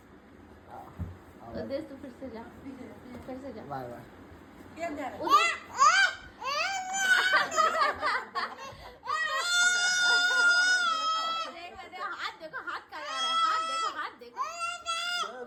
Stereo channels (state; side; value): identical; both; correlation 1.00